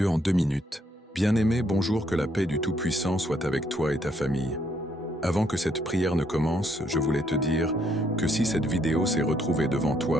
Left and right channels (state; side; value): normal; both; correlation 0.72